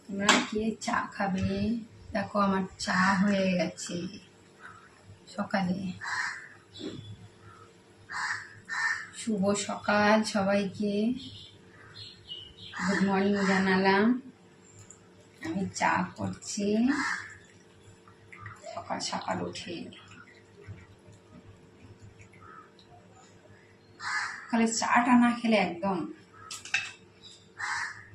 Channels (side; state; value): both; identical; correlation 1.00